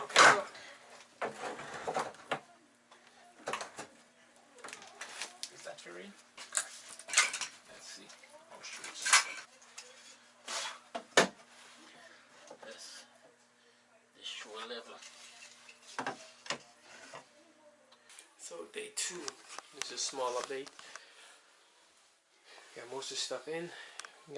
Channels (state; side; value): identical; both; correlation 1.00